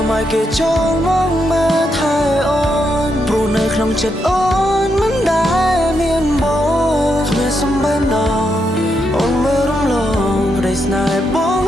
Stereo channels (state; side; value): normal; both; correlation 0.81